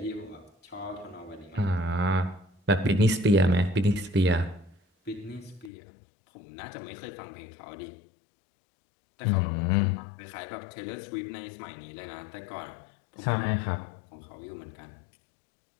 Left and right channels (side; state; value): right; drops out; at 5.7 s